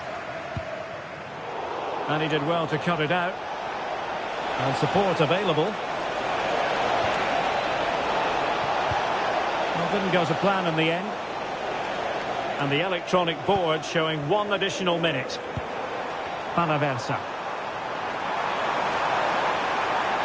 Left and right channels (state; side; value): identical; both; correlation 1.00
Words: And he did well to cut it out. And support available. Well, didn't go to plan in the end. And the electronic board showing 1 additional minute. Panaversa.